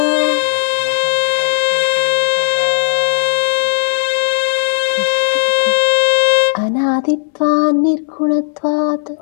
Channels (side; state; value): right; silent; digital silence